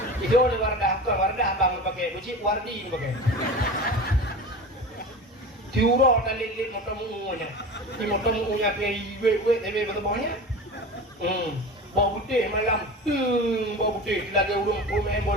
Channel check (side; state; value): both; normal; correlation 0.32